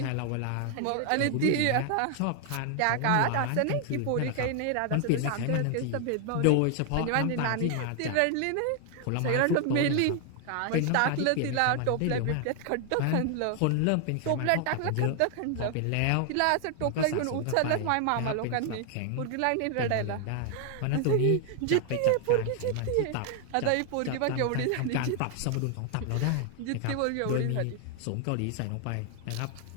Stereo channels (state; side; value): different; both; correlation 0.00